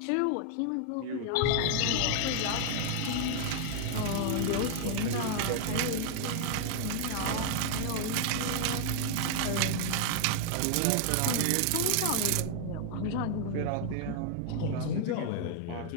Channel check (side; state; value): both; different; correlation 0.00